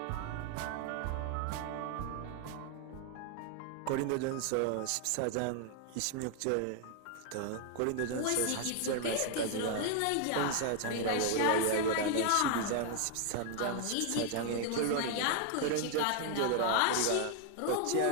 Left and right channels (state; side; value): different; both; correlation 0.00